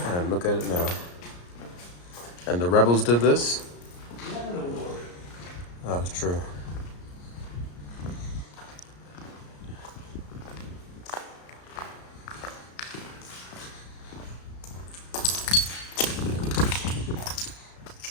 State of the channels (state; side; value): late; right; 34 ms